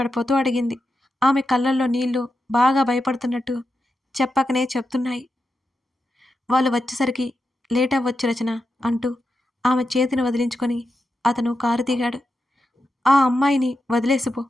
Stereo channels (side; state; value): both; normal; correlation 0.88